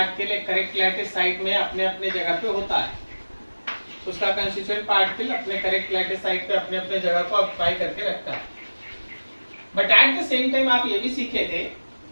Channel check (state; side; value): inverted; both; correlation -1.00